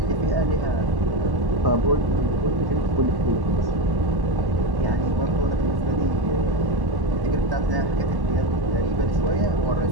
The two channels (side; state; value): left; late; 1.1 ms